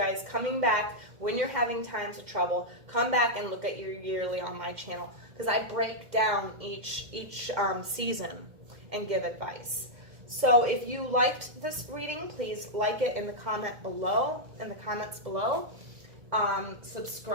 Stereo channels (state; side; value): late; left; 2.1 ms